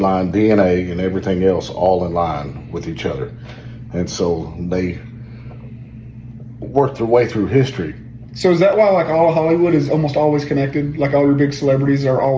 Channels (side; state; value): both; identical; correlation 1.00